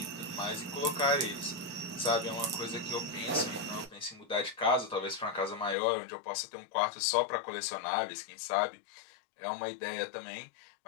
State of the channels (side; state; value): right; drops out; at 5.8 s